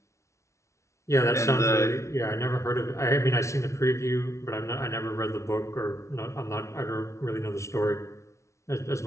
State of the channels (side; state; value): right; late; 0.14 ms